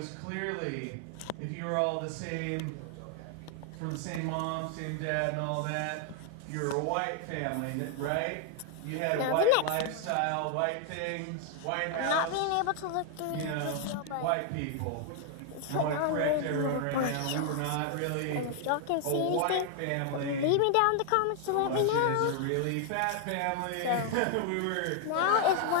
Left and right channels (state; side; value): different; both; correlation 0.00